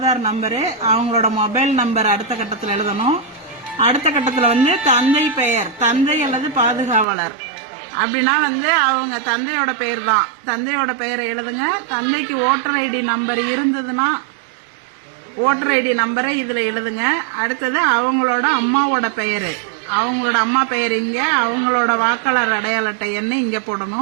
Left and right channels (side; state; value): left; drops out; at 7.1 s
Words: நம்பரு, அவங்களோட மொபைல் நம்பர் அடுத்த கட்டத்தில் எழுதணும். அடுத்த கட்டத்தில் தந்தை பெயர், தந்தை அல்லது பாதுகாவலர் அப்படின்னா அவங்க தந்தையோட பெயர் தான். தந்தையோட பெயரை எழுதுங்க. தந்தைக்கு ஓட்டர் ஐடி நம்பர் இருந்ததுன்னா ஓட்டர் ஐடி நம்பரை இதுல எழுதுங்க. அடுத்தது அவங்களோட அம்மாவோட பெயரு, அவங்களோட அம்மா பெயர் இங்க, அவங்களோட வாக்காளர் அடையாள அட்டை எண்ணை இங்க